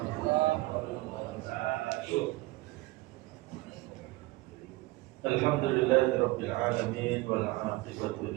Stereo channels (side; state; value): left; quieter; 20.8 dB